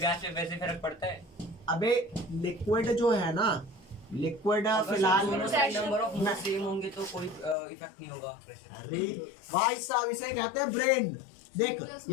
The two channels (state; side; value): drops out; right; at 7.6 s